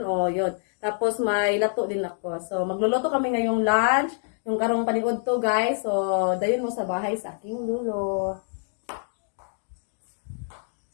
o yun. Tapos may lato din ako. So magluluto kami ngayong lunch, yung karong paniudto guys. So dayon mo sa bahay sa aking lulo.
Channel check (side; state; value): right; silent; digital silence